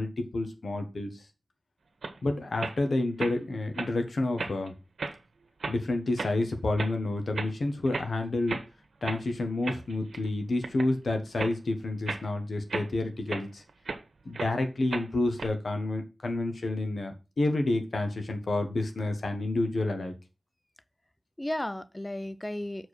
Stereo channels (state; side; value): normal; both; correlation 0.93